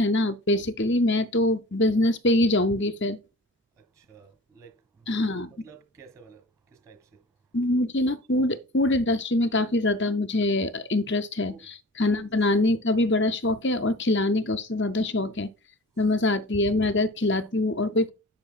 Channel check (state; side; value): normal; both; correlation 0.41